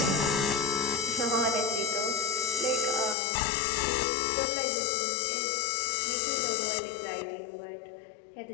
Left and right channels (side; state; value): right; drops out; at 3.2 s